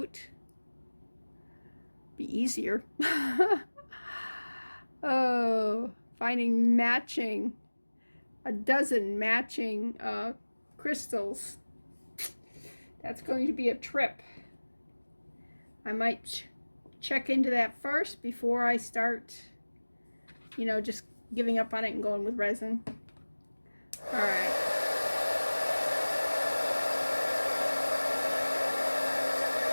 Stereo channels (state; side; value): inverted; both; correlation -1.00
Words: Be easier. Oh, finding matching, a dozen matching crystals. That's going to be a trip. I might check into that first before I start, you know, just giving up on it and going with resin. All right.